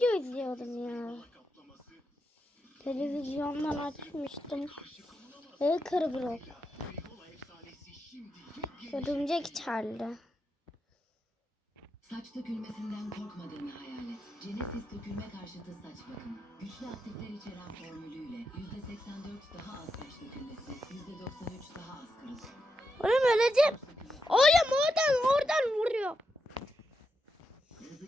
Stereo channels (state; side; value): normal; both; correlation 0.85